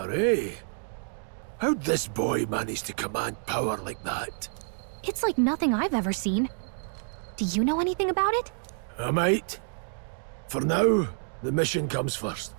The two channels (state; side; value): silent; left; 59 dB below the other